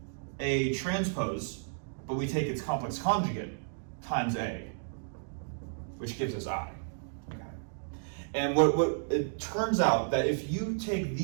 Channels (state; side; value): silent; left; digital silence